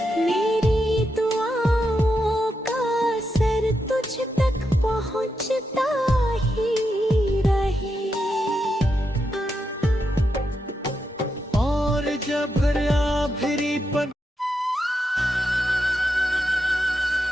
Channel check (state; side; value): normal; both; correlation 0.85